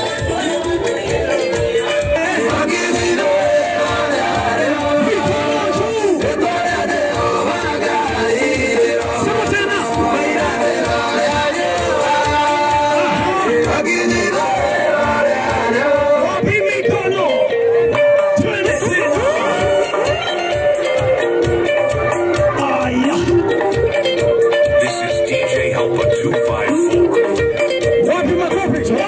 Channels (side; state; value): both; identical; correlation 1.00